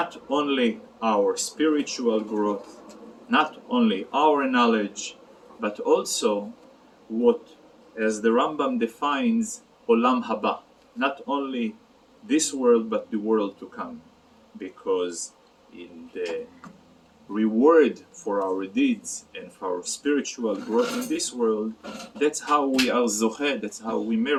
only our spiritual growth, not only our knowledge, but also what, as the Rambam defines, Olam Haba, not only this world but the world to come, because in the reward for our deeds and for our spiritual growth in this world, that's how we are zocheh, that's how we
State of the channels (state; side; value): identical; both; correlation 1.00